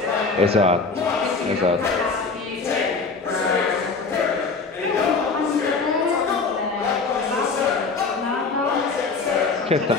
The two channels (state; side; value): quieter; right; 4.3 dB